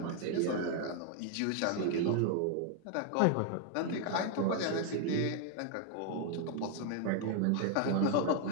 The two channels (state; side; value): different; both; correlation 0.00